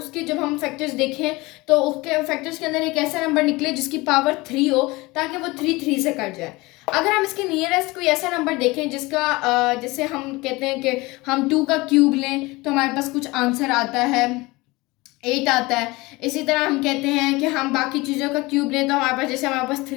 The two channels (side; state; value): right; quieter; 22.3 dB